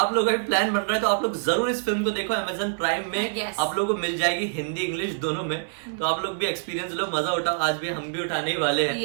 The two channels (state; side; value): silent; left; 61 dB below the other